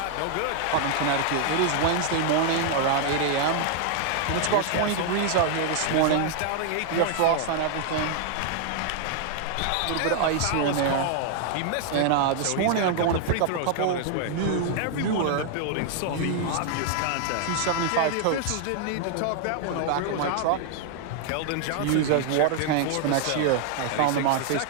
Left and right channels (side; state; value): both; different; correlation 0.00